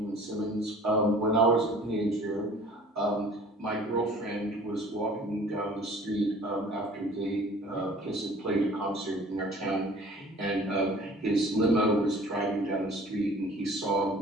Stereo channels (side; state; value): both; normal; correlation 0.49